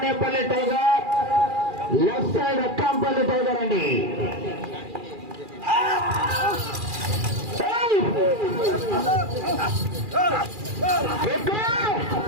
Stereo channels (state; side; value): late; left; 2.4 ms